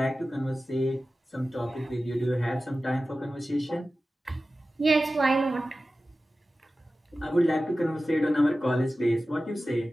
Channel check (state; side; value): normal; both; correlation 0.95